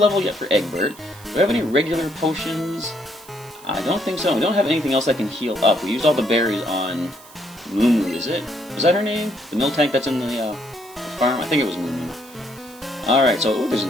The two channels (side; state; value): right; noise; hiss, 21 dB below the sound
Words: yet for Egbert. Do we have any regular potions? I don't think so. We don't have anything else that can heal up. We used all the berries on Moo, is it? Was that her name? The mill tank that's in the farm? I think it was Moo. Alright, so there's